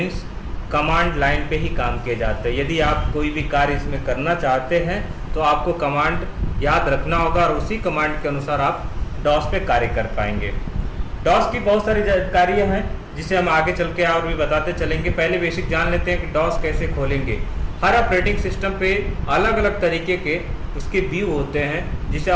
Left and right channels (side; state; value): both; identical; correlation 1.00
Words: कमांड लाइन पे ही काम किए जाते हैं। यदि आप कोई भी कार्य इसमें करना चाहते हैं तो आपको कमांड याद रखना होगा, और उसी कमांड के अनुसार आप डॉस पे कार्य कर पाएंगे। डॉस की बहुत सारी जानकारियाँ हैं जिसे हम आगे चल के और भी बताते चलेंगे। पहले बेसिक जान लेते हैं कि डॉस कैसे खोलेंगे। हर ऑपरेटिंग सिस्टम पे अलग अलग तरीके के उसके व्यू होते हैं, जिसे